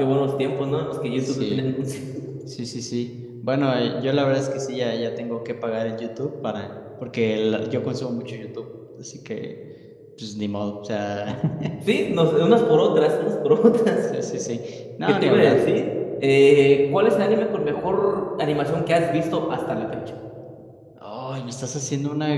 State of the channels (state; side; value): identical; both; correlation 1.00